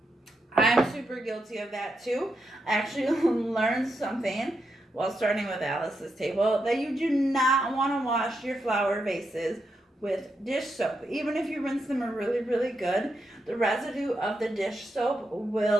I'm super guilty of that too. I actually learned something while starting with Alice's table, that you do not want to wash your flower vases with dish soap. Even if you rinse them really, really good, the residue of the dish soap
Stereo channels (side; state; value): both; normal; correlation 0.84